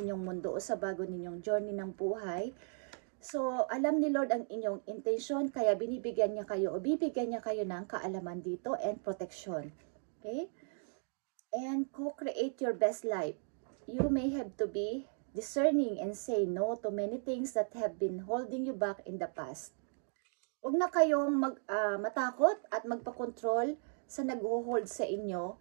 mundo o sa bago ninyong journey ng buhay. So, alam ni Lord ang inyong intention, kaya binibigyan niya kayo o bibigyan niya kayo ng kaalaman dito and protection. Okay? And co-create your best life. You may have to be discerning and say no to many things that have been holding you back in the past. Huwag na kayong matakot at magpakontrol sa nag-hold sa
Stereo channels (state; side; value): silent; left; 54 dB below the other